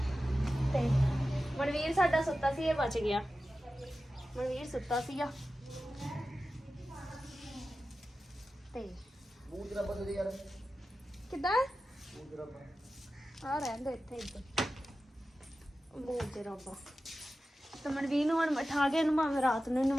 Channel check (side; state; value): both; normal; correlation 0.94